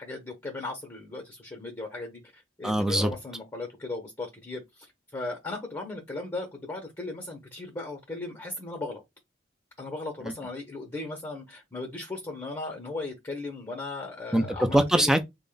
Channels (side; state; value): both; normal; correlation 0.77